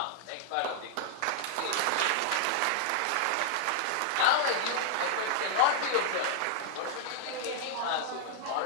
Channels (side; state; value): both; different; correlation -0.01